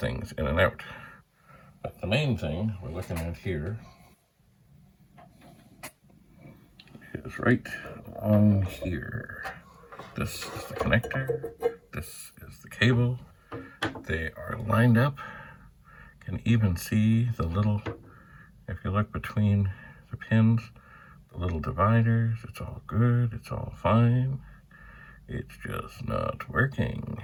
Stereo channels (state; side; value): identical; both; correlation 1.00